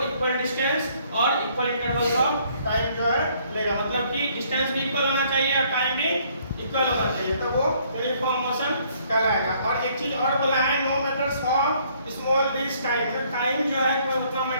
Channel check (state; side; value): inverted; both; correlation -0.64